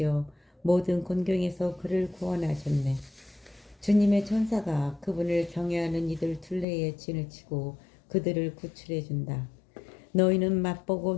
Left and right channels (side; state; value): right; drops out; at 6.7 s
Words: 모든 곤경에서 그를 구원하셨네. 주님의 천사가 그분을 경외하는 이들 둘레에 진을 치고 그들을 구출해 준다. 너희는 맛보고